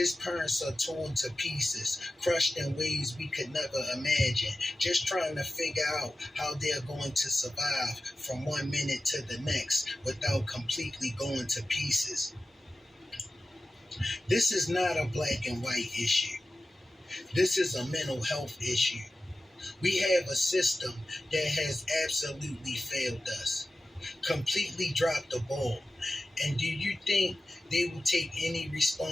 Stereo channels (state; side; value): normal; both; correlation 0.94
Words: parents are torn to pieces, crushed in ways we could never imagine, just trying to figure out how they're going to survive from one minute to the next without completely going to pieces. This is not a black and white issue. This is a mental health issue. We have a system that has absolutely failed us, completely dropped the ball. And do you think they will take any